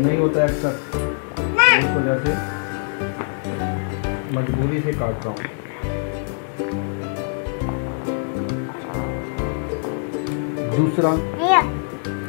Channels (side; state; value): right; silent; digital silence